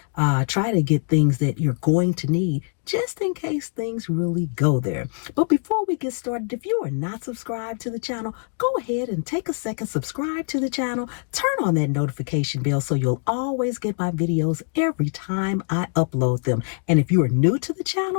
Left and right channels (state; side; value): silent; right; 57 dB below the other